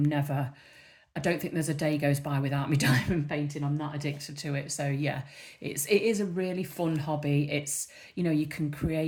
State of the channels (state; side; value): identical; both; correlation 1.00